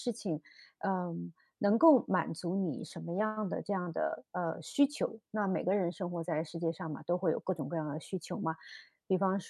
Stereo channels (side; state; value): both; identical; correlation 1.00